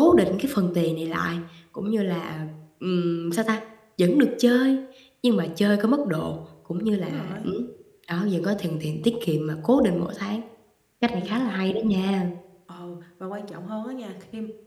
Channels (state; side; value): identical; both; correlation 1.00